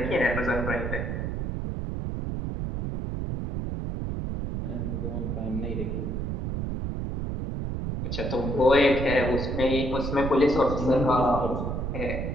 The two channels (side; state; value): right; noise; rumble, 3 dB below the sound